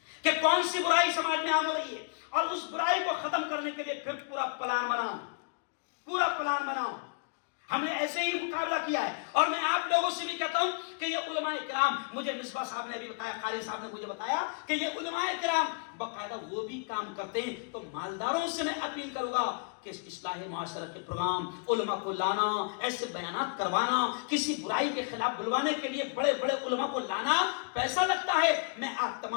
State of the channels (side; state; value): right; quieter; 36.8 dB